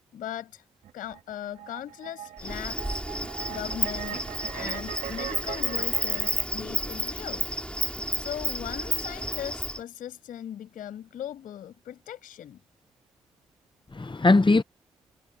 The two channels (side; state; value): both; normal; correlation 0.68